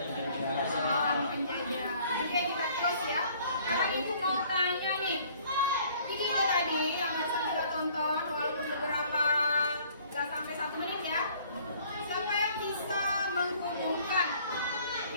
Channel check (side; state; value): both; inverted; correlation -0.57